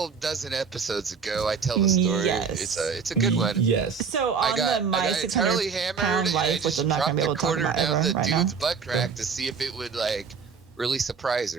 dozen episodes ago, I tell the story. Yes. It's a good one. Yes. So on I got the my entirely 600-pound hammered, and I life, which just I'm not gonna dropped be a able to talk quarter about down ever the right dude's now. butt crack to see if it would like really surprise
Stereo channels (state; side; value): quieter; left; 5.9 dB